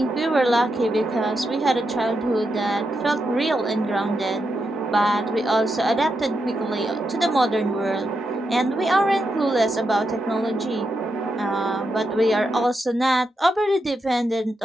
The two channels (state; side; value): normal; both; correlation 0.85